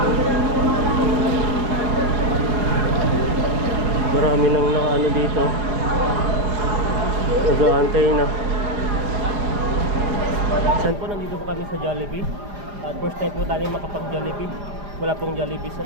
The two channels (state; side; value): late; left; 4.9 ms